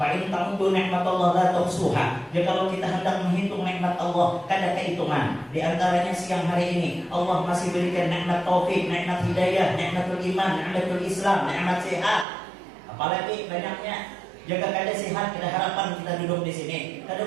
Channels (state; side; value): drops out; left; at 12.2 s